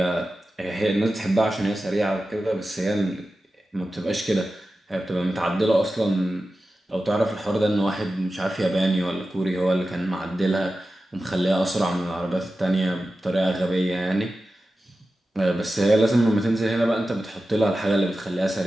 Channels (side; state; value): both; normal; correlation 0.93